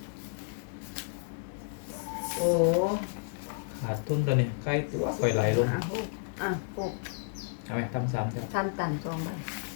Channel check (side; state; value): right; silent; digital silence